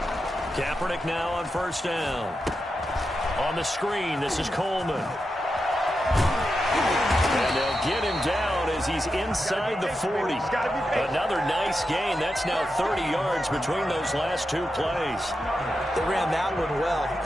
Kaepernick now on first down. On the screen, this is Coleman. And they'll get him down as he's inside the 40. Another nice gain. That's now 30 yards between those last two plays. They ran that one well,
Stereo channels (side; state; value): both; normal; correlation 0.88